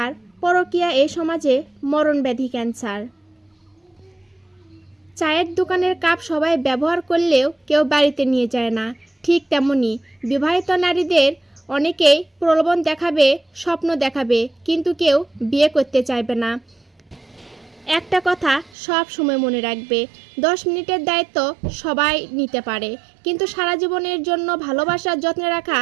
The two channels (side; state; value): left; drops out; at 18.7 s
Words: পরকীয়া এই সমাজে মরণব্যাধি ক্যান্সার। চায়ের দোকানের কাপ সবাই ব্যবহার করলেও কেউ বাড়িতে নিয়ে যায় না। ঠিক তেমনি বিবাহিত নারীদের অনেকেই প্রলোভন দেখাবে, স্বপ্ন দেখাবে, কিন্তু কেউ বিয়ে করতে চাইবে না। একটা কথা সব সময় মনে রাখবে, 10 মিনিটের দায়িত্ব সবাই নিতে পারে, কিন্তু সারা জীবনের জন্য ভালোবাসার যত্নে রাখা